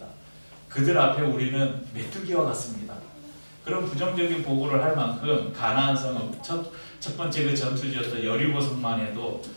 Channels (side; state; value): both; inverted; correlation -1.00